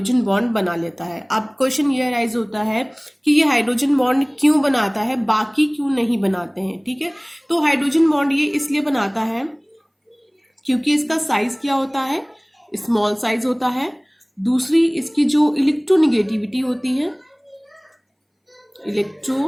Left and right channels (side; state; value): both; identical; correlation 1.00